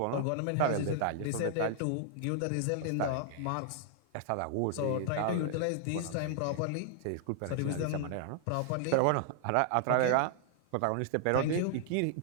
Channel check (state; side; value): different; both; correlation -0.01